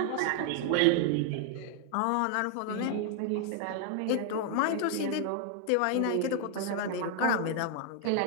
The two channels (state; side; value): different; both; correlation 0.00